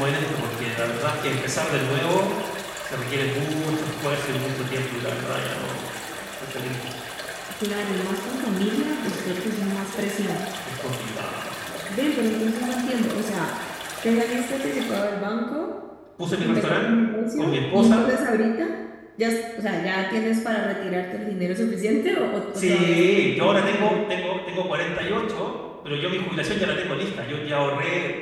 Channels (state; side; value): identical; both; correlation 1.00